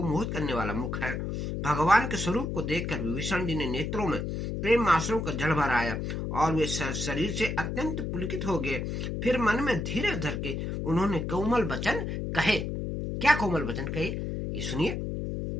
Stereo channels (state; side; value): noise; left; hum, 3 dB below the sound